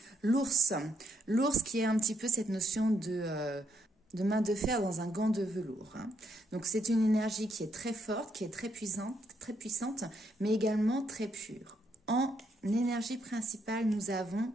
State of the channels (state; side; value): normal; both; correlation 0.75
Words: l'ours. L'ours qui est un petit peu cette notion de main de fer dans un gant de velours. Donc, c'est une énergie qui est très forte, qui est très puissante, mais également très pure. En énergie principale, nous avons